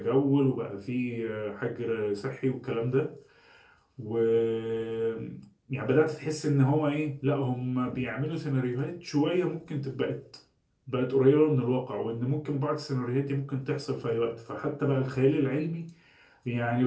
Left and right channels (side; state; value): both; identical; correlation 1.00